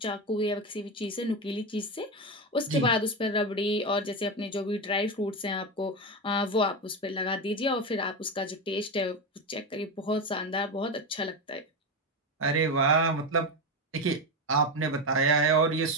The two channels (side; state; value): both; normal; correlation 0.15